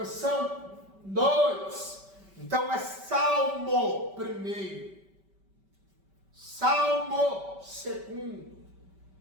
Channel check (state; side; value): late; left; 5.2 ms